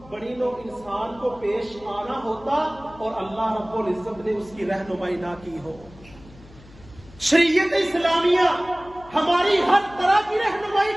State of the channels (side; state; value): left; noise; hum, 22 dB below the sound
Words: بنی نوع انسان کو پیش آنا ہوتا اور اللہ رب العزت نے اس کی رہنمائی نہ کی ہو۔ شریعت اسلامیہ ہماری ہر طرح کی رہنمائی